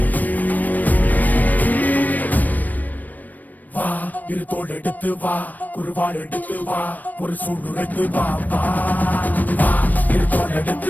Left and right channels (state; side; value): late; right; 0.084 ms